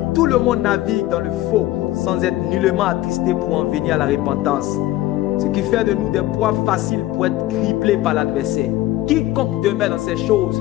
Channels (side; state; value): right; quieter; 15.9 dB